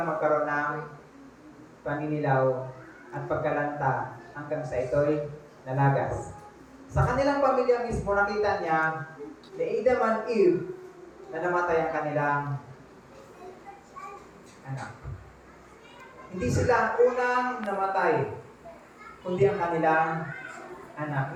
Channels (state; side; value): identical; both; correlation 1.00